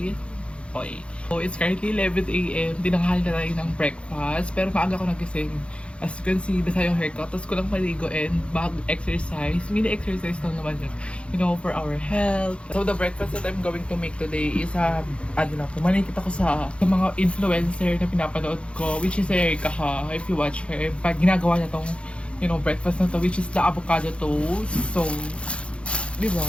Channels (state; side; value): late; right; 0.059 ms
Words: Oy. So it's currently 11 a.m. Tinanghali na tayo ng breakfast. Pero maaga ko nagising. As you can see, basta yung haircut. Tapos ko lang maligo and mag-exercise. Mini exercise lang naman yun. For our health. So the breakfast that I'm going to make today is manikita ko sa mga influencer na pinapanood ko, which is Erica Ha, if you watch her. Pag ginagawa niya tong, breakfast na to, which is the avocado toast. So, di ba?